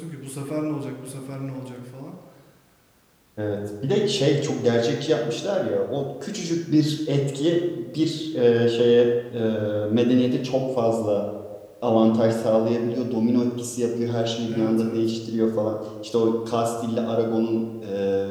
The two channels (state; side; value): identical; both; correlation 1.00